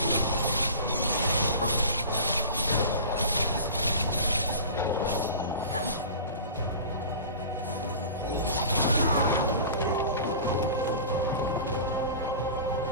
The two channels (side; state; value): both; inverted; correlation -0.37